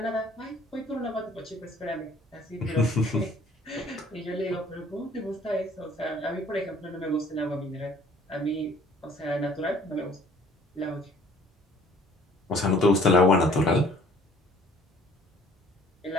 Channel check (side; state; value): both; normal; correlation 0.56